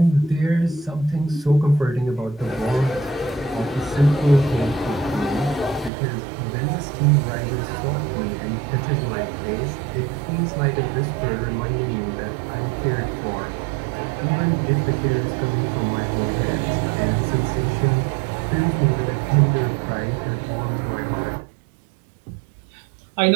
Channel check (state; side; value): drops out; left; at 5.9 s